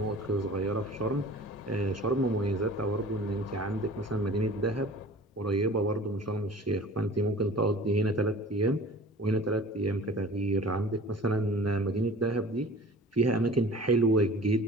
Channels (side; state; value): both; normal; correlation 0.43